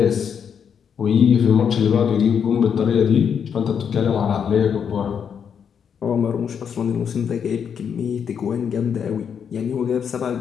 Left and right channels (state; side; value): quieter; right; 7.4 dB